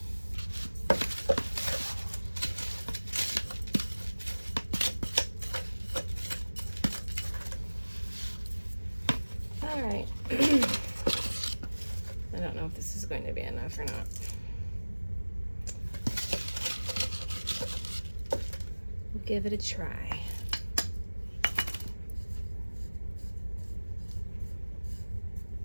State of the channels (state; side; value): inverted; both; correlation -1.00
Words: All right. I don't know if this is going to be enough or not. We'll give it a try.